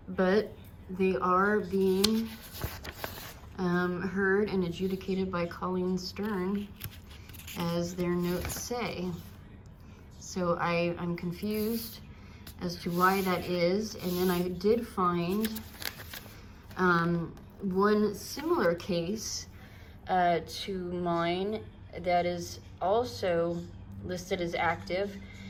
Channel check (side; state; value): both; identical; correlation 1.00